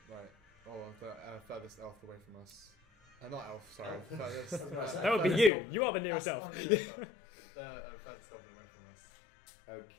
right, or the furthest elf away from us. Not elf, sorry. Elf. Furthest, That would be furthest you. goblin. You are the nearest That's elf. the nearest elf. The furthest goblin away from us.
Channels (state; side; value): drops out; right; at 5.5 s